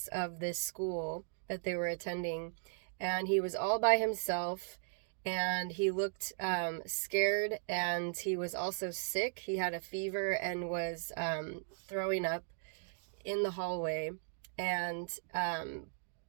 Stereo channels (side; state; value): left; silent; digital silence